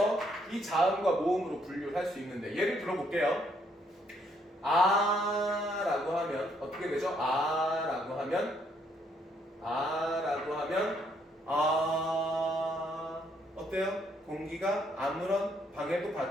이 자음과 모음으로 분류를 할 수 있는데, 예를 들어볼게요. 아라고 하면 어떻게 되죠? 아라고 하면 어때요? 공기가 아무런 방해도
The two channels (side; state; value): both; normal; correlation 0.71